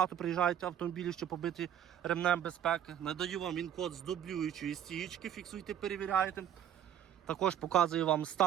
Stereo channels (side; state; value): left; quieter; 10.1 dB